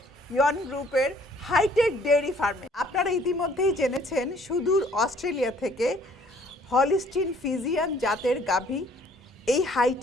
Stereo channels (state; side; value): normal; both; correlation 0.59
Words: ইয়ন গ্রুপের হাইটেক ডেয়ারি ফার্মে। আপনারা ইতিমধ্যেই জেনেছেন সুদূর অস্ট্রেলিয়া থেকে হলিস্টিন ফিজিয়ান জাতের গাভী এই